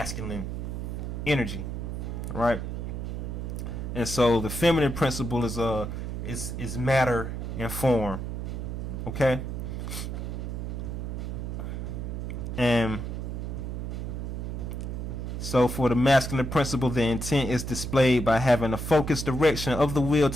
energy, right? And so the feminine principle is matter and form, okay? And so for the masculine principle, the intent is displayed by having a focused direction of the will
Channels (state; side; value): noise; right; hum, 4 dB below the sound